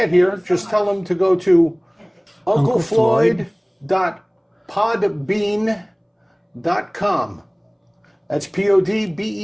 here, just tell them to go to unclefloyd.podbean.com. That's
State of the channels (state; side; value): identical; both; correlation 1.00